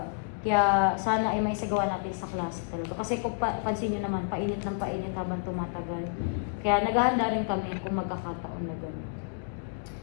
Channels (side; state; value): right; silent; digital silence